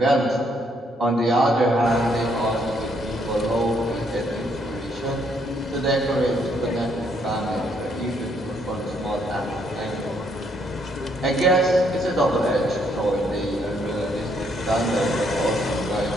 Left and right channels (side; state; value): both; normal; correlation 0.71